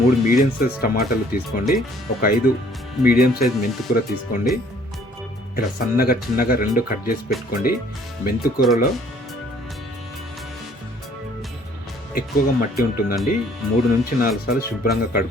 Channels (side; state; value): both; normal; correlation 0.59